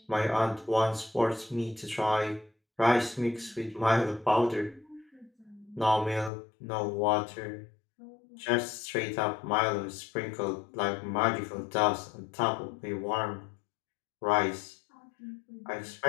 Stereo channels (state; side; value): drops out; right; at 6.3 s